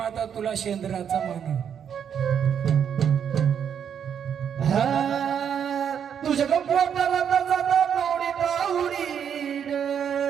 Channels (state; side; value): quieter; left; 8.1 dB